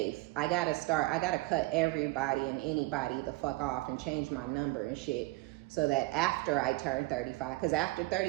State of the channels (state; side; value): quieter; left; 21.5 dB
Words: I gotta cut everybody and anybody the fuck off and change my number and shit, so that after I turn 35, because after